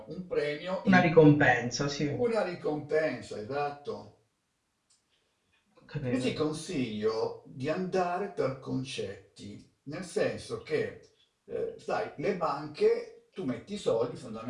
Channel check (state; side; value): identical; both; correlation 1.00